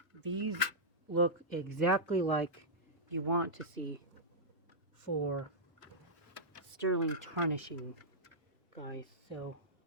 These look exactly like you want to see for sterling tarnishing, guys. So,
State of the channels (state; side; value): normal; both; correlation -0.11